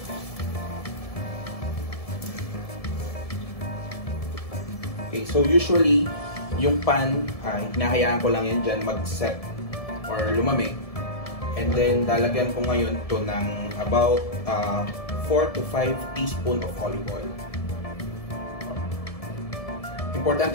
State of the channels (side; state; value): right; late; 1.7 ms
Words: Okay, so usually, yung pan, hinahayaan ko lang yan dyan mag-set or lumamig. And then, dalagyan ko ngayon to ng about 4 to 5 teaspoon of olive oil.